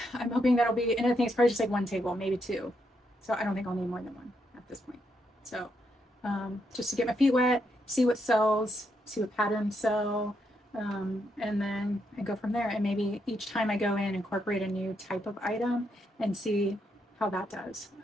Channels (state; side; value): normal; both; correlation 0.79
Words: I'm hoping that'll be, and I think it's probably just like one table, maybe 2. So I don't think I'll need more than one at this point. So just to get my feet wet, see what sells, see what patterns sell, and then I go from there. And maybe each time I go in, incorporate a new type of item and see how that does.